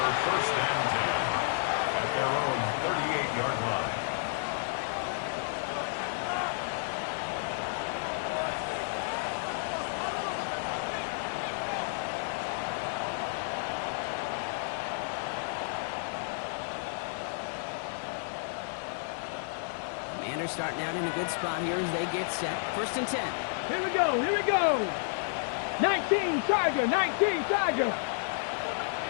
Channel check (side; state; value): right; silent; 57 dB below the other